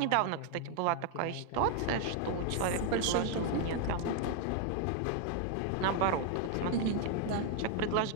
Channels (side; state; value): both; different; correlation 0.00